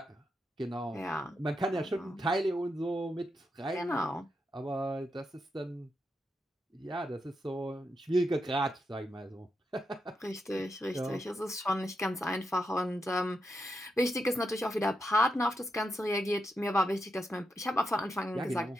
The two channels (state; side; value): normal; both; correlation 0.84